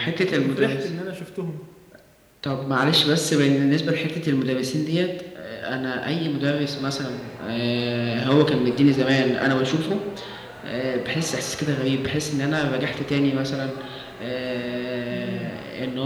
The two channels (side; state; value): both; identical; correlation 1.00